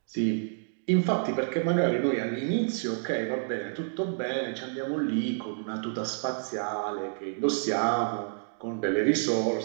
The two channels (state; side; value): silent; left; digital silence